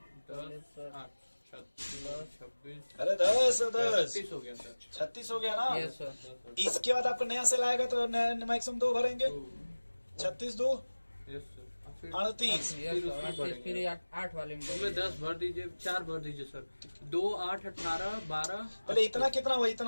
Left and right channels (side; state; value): both; inverted; correlation -1.00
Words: 10 8 26। अरे 10 36 हो गया सर। 36 हो गया ना? Yes sir. इसके बाद आपको नया सेल आएगा तो मैक्सिमम 2 भरेंगे। 36 2 यस सर। फिर 38। Yes sir. फिर 8 वाले में उसमें 10 भर दीजिए, 4 भर दीजिए सर। 2 8 18 12। पहले इतना कितना हुआ?